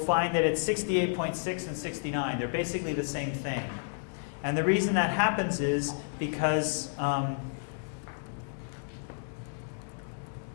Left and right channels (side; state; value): right; silent; digital silence